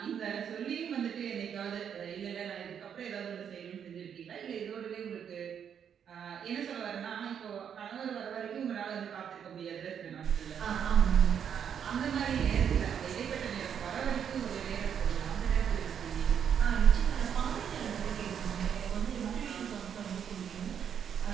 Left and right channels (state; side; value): quieter; left; 8.2 dB